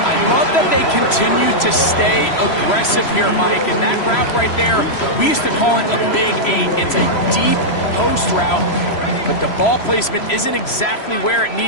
I love that they continue to stay aggressive here, Mike. And that route right there, we used to call it a big 8. It's a deep post route, but the ball placement isn't exactly where it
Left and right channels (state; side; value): late; right; 3.0 ms